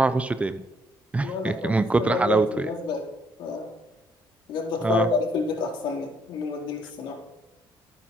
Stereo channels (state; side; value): normal; both; correlation 0.70